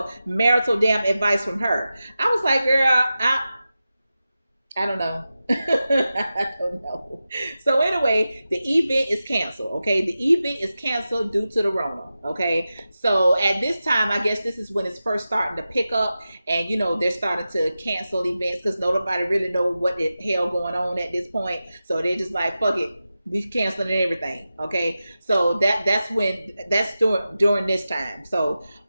marital damn advice from her? I was like, girl, I don't know. I don't know. So anyway, the event is canceled. Okay. The event is canceled due to the Rona. Okay. So at this time, I guess this is when it's first starting to pick up, and they're starting to cancel events because nobody really know what the hell going on at this point. So they're just like, fuck it, we canceling everything. Okay. So that's during this time. So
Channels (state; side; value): inverted; both; correlation -0.93